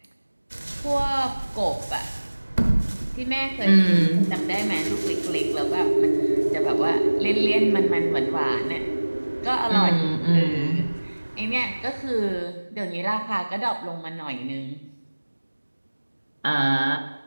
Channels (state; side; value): inverted; both; correlation -1.00